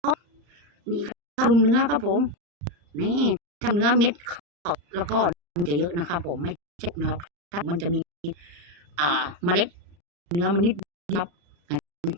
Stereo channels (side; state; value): left; late; 35 ms